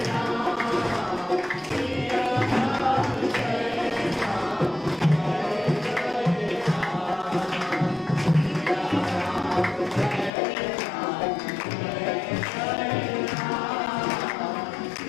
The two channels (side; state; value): right; drops out; at 10.3 s